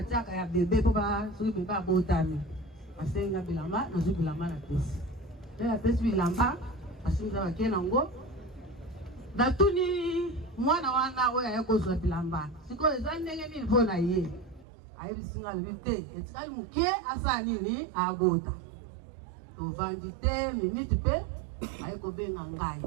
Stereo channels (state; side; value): drops out; left; at 14.7 s